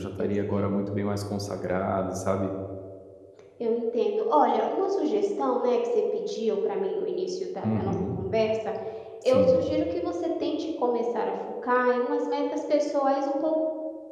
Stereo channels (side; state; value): both; identical; correlation 1.00